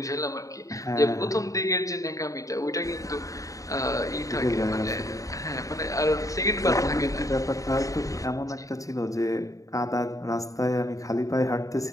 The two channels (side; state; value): right; late; 0.16 ms